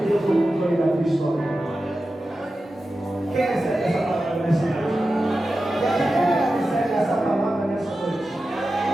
Deus no controle da tua história. Quem recebe essa palavra nessa noite? Quem recebe essa palavra nessa noite?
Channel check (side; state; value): both; normal; correlation 0.93